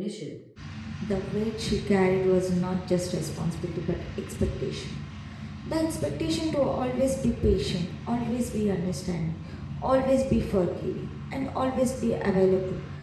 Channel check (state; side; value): identical; both; correlation 1.00